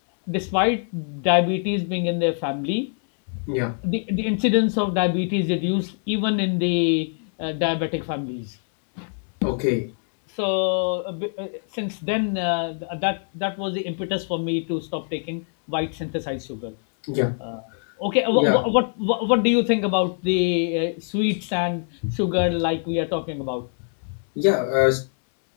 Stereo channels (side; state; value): right; silent; 62 dB below the other